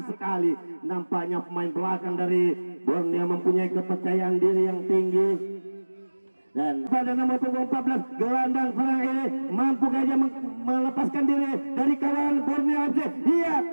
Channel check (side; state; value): both; inverted; correlation -1.00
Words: sekali. Nampaknya pemain belakang dari Borneo mempunyai kepercayaan diri yang tinggi. Dan pada nomor punggung 14 gelandang serang ini mampu saja melepaskan diri dari kawan Borneo FC. Iya,